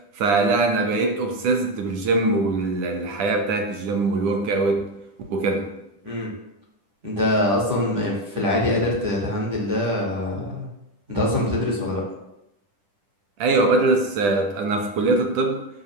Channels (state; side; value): late; left; 10 ms